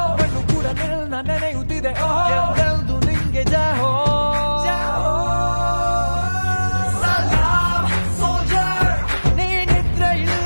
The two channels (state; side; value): inverted; both; correlation -1.00